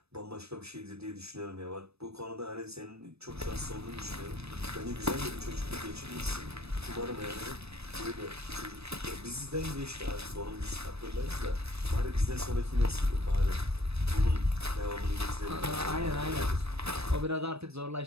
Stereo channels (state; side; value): late; left; 0.79 ms